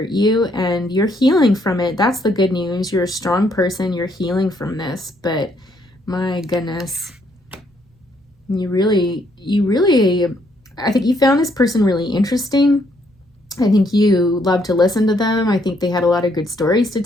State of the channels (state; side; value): normal; both; correlation 0.71